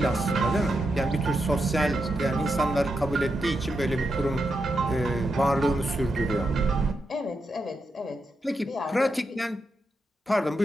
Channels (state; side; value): normal; both; correlation 0.85